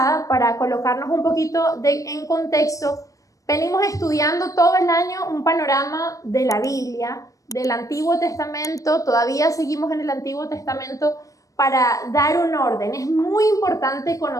para colocarnos un poquito en contexto, venimos estudiando todo el año un panorama de la Biblia, del Antiguo Testamento. Todavía seguimos en el Antiguo Testamento para dar un orden. Es muy importante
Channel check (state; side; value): late; right; 0.16 ms